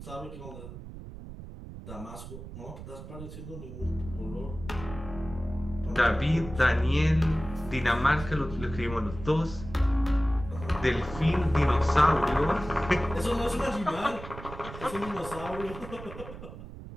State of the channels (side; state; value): right; noise; rumble, 12 dB below the sound